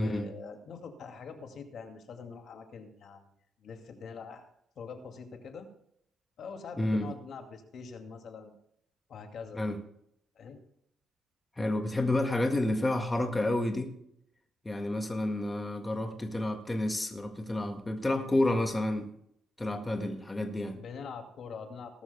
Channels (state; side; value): normal; both; correlation 0.92